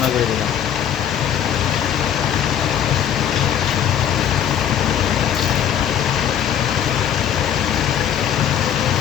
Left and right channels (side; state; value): right; quieter; 9.5 dB